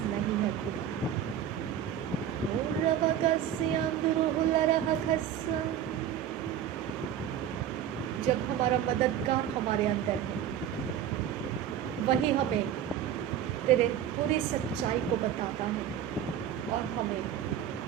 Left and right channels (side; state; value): left; quieter; 9.9 dB